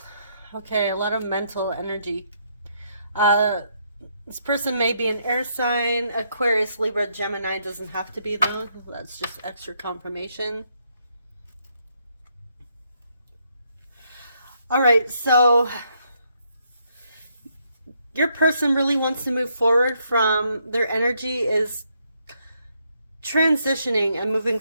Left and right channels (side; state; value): both; inverted; correlation -0.75